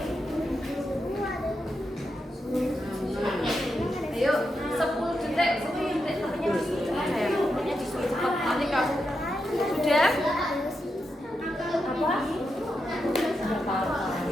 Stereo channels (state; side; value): normal; both; correlation 0.86